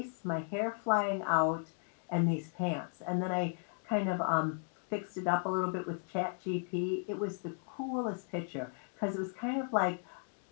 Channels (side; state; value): right; silent; 54 dB below the other